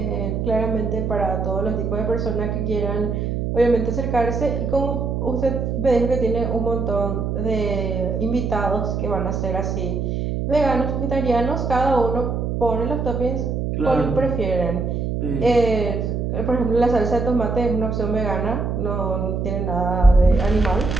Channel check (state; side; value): noise; right; hum, 1 dB below the sound